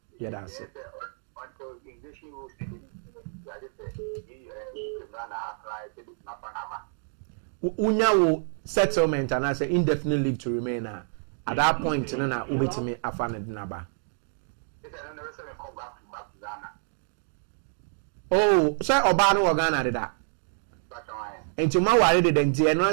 Yeah, that's it. Until English rules, I just say you can run apply to this Panama. Unya will settlement and I say indefinite leave to remain at that point no na ubetimi afana dinaba. It's another reason come back to Ghana. Oh, say oba no Ghana did that. But I Enti ma ware de denti e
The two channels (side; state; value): left; silent; 60 dB below the other